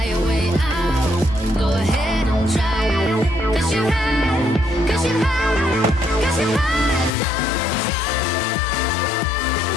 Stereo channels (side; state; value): right; drops out; at 7.1 s